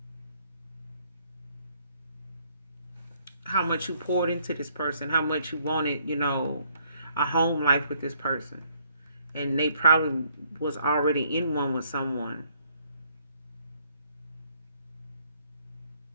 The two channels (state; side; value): inverted; both; correlation -0.69